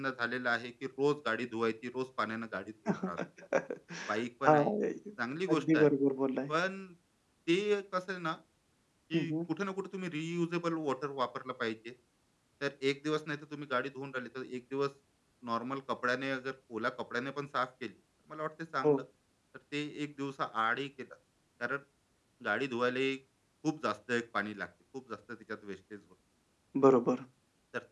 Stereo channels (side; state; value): both; identical; correlation 1.00